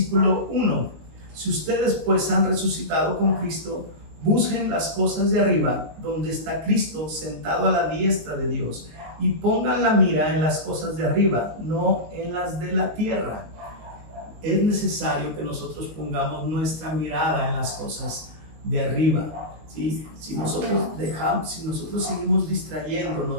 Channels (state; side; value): late; left; 19 ms